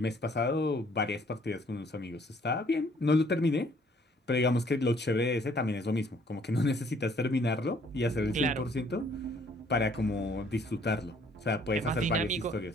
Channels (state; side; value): normal; both; correlation 0.61